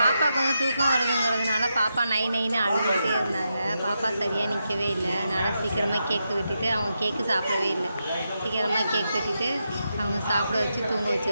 தூக்கம் வருதுங்கிறதுனால பாப்பா நைன்னு அழுதுகிட்டே இருந்தாங்க. பாப்பா சரியாக நிற்கவே இல்லை. அதனால் சீக்கிரமாக கேக்கு வெட்டிட்டு அவங்க கேக்கு சாப்பிடவே இல்லை. சீக்கிரமாக கேக் வெட்டிட்டு அவங்க சாப்பிட வச்சு தூங்க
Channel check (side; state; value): both; inverted; correlation -0.86